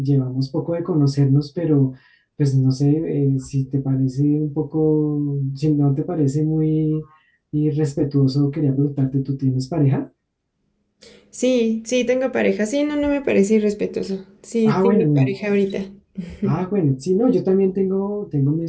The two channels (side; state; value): both; identical; correlation 1.00